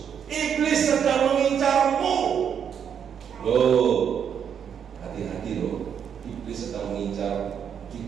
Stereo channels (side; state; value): left; quieter; 8.0 dB